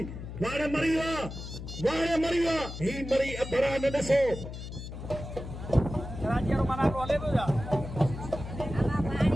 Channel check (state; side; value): noise; left; hum, 9 dB below the sound